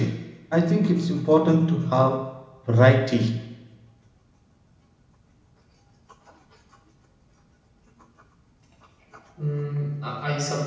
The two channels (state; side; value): identical; both; correlation 1.00